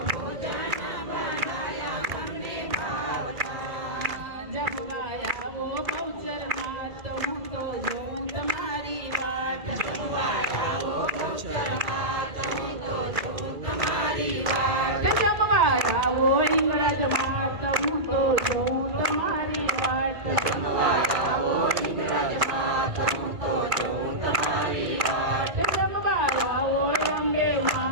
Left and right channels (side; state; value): left; late; 2.3 ms